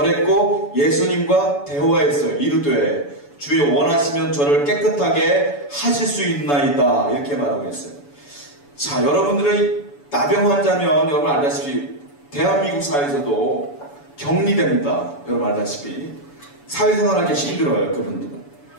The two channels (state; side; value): late; right; 7.0 ms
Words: 예수님과 대화했어요. 이르되 주여 원하시면 저를 깨끗하게 하실 수 있나이다 이렇게 말하고 있어요. 자, 여러분들의 나병 환자면 여러분 알다시피 대한민국 사회에서도 격리됩니다. 여러분 알다시피 사회생활하기 힘들어요. 그분들은.